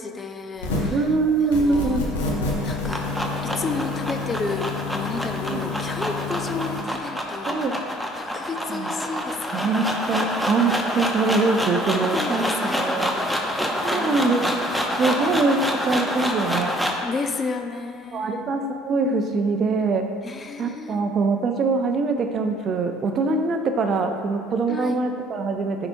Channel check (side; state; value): both; normal; correlation 0.59